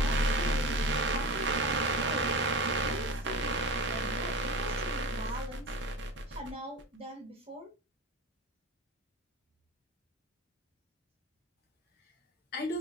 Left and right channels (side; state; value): both; normal; correlation 0.30